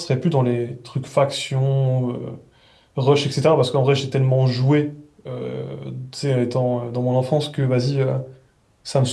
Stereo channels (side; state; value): both; identical; correlation 1.00